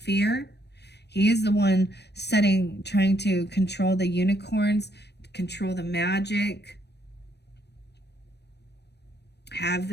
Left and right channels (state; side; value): late; right; 0.49 ms